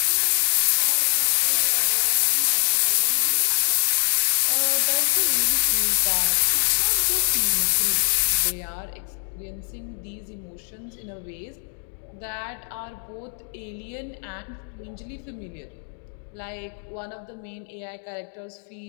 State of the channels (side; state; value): right; silent; 58 dB below the other